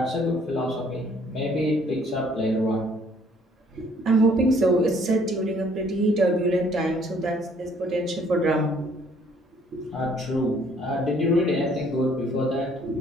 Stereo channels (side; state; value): both; normal; correlation 0.61